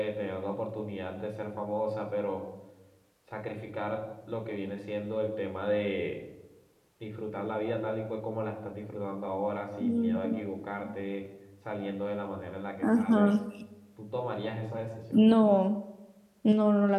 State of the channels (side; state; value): both; identical; correlation 1.00